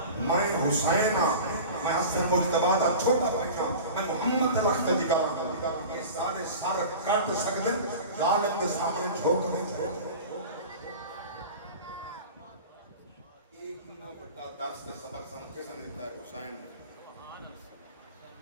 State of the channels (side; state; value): both; inverted; correlation -0.36